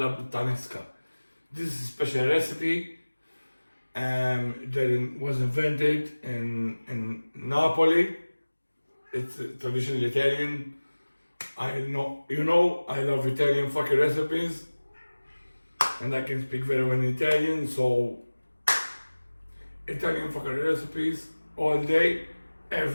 puttanesca. This is a special recipe that was invented in Napoli. It's traditional Italian. I love Italian fucking recipes. And I can speak very well in Italian, so Italian fucking recipes all day,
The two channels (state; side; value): inverted; both; correlation -1.00